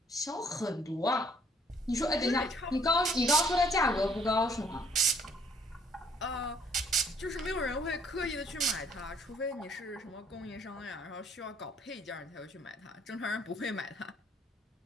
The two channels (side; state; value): both; normal; correlation 0.63